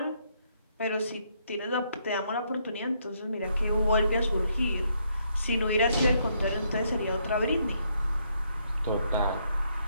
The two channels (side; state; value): both; inverted; correlation -0.73